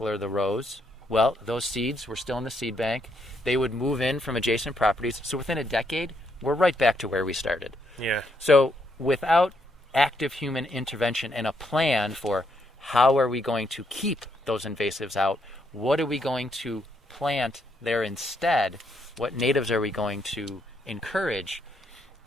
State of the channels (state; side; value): normal; both; correlation 0.75